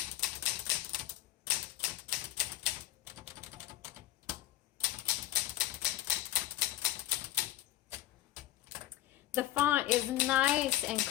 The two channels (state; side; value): quieter; right; 14.8 dB